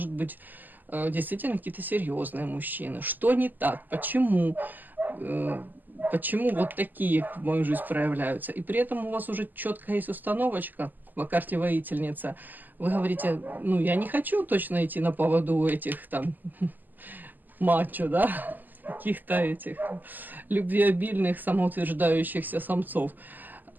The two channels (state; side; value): late; left; 0.086 ms